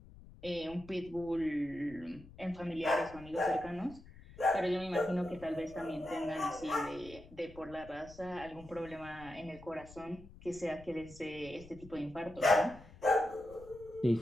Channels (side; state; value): left; noise; rumble, 19 dB below the sound